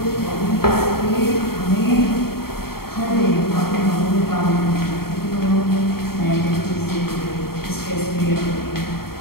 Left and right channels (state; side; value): late; right; 0.94 ms